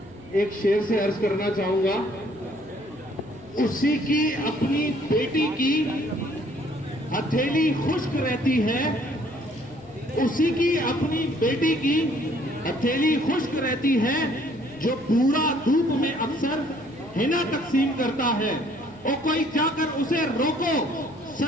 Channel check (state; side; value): noise; left; hum, 25 dB below the sound